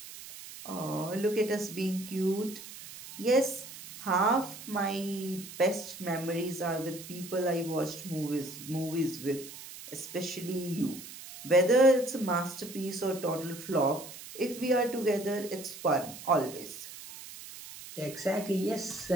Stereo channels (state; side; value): noise; right; hiss, 14 dB below the sound